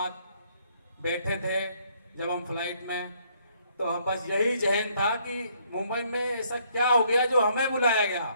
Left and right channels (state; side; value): inverted; both; correlation -0.68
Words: बैठे थे जब हम फ्लाइट में, तो हम बस यही जहन था कि मुंबई में ऐसा क्या हो गया जो हमें बुलाया गया।